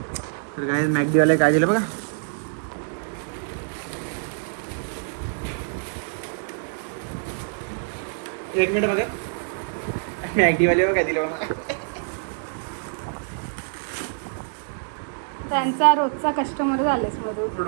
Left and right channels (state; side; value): silent; left; 61 dB below the other